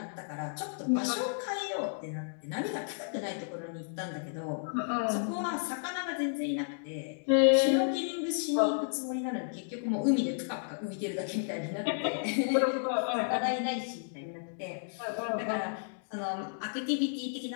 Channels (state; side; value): silent; right; digital silence